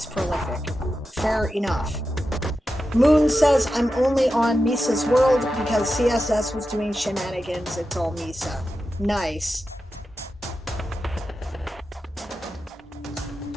prolific. Fair enough. Moon says, I'm only on Misa's world because CSS was doing shenanigans. It's all Misa. Nice.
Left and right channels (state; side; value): normal; both; correlation 0.91